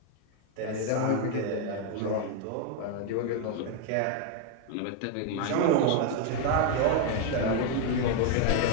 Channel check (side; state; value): both; different; correlation 0.00